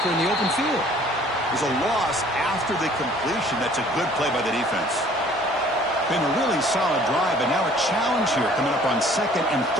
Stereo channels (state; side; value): normal; both; correlation 0.55